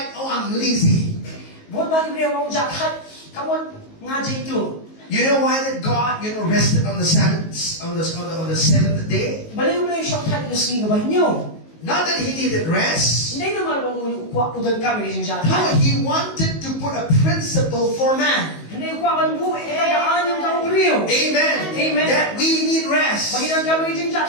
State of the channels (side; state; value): right; late; 19 ms